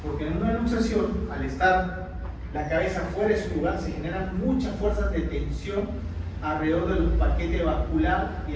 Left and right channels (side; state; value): both; identical; correlation 1.00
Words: porque en una luxación, al estar la cabeza fuera de su lugar, se generan muchas fuerzas de tensión alrededor del paquete vascular